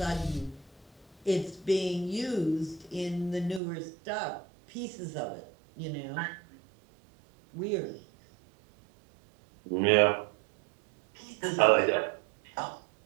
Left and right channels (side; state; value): left; drops out; at 3.6 s